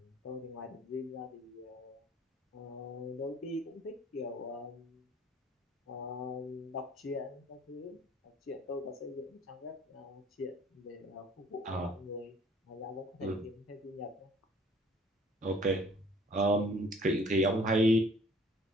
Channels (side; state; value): both; normal; correlation 0.55